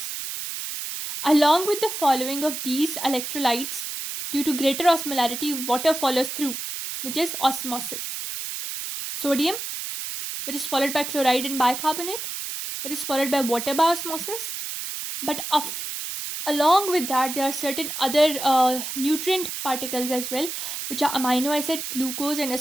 Along with the following of these electrolytes, due to greater osmolarity, water follows through, which is osmosis. Sodium, which is followed by chloride and bicarbonate, which is followed by water by osmosis. But along with that, there are certain other nutrient particles as well, which are amino acid, glucose, and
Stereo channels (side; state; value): right; noise; hiss, 6 dB below the sound